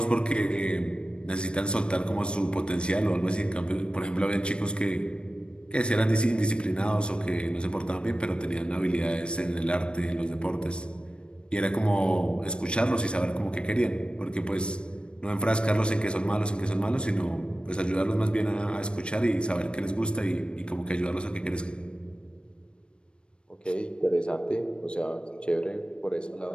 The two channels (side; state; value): right; late; 0.055 ms